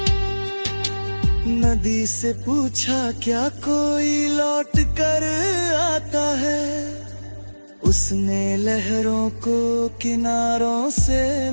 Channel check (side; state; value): both; inverted; correlation -1.00